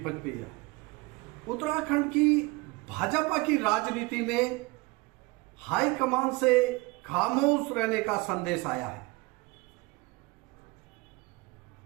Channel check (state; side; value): quieter; left; 24.0 dB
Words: पचपैया। उत्तराखंड की भाजपा की राजनीति में हाईकमान से खामोश रहने का संदेश आया है।